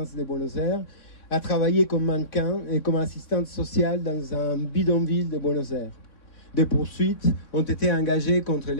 de Buenos Aires, a travaillé comme mannequin et comme assistante sociale dans un bidonville de Buenos Aires. Des poursuites ont été engagées contre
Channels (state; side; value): late; right; 3.6 ms